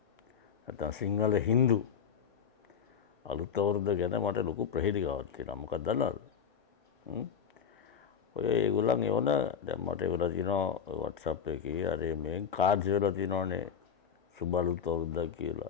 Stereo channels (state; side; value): quieter; right; 7.4 dB